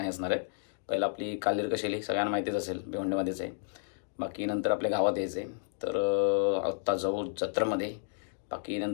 असणार आहेत. पहिला आपली कालीर कशेली सगळ्यांना माहितीच असेल, भिवंडीमध्येच आहे. बाकी नंतर आपल्या गावात यायचं आहे. तर आत्ता जाऊ जत्रेमध्ये. बाकी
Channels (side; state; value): right; silent; digital silence